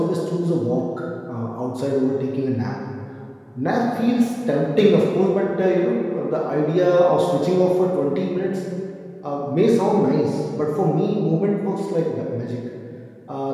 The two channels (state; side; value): identical; both; correlation 1.00